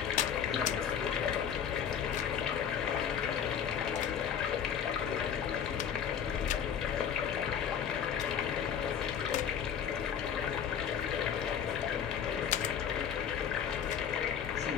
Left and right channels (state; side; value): quieter; right; 8.3 dB